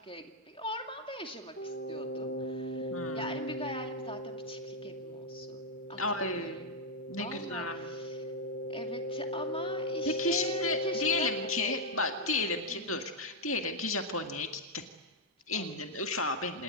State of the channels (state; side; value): normal; both; correlation -0.02